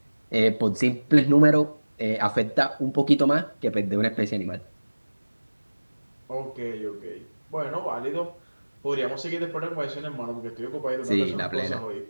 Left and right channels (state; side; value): inverted; both; correlation -1.00